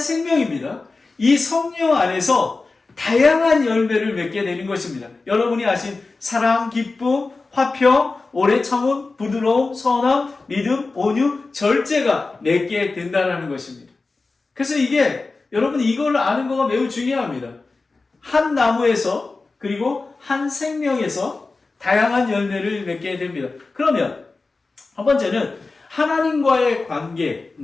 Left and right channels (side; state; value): right; quieter; 3.8 dB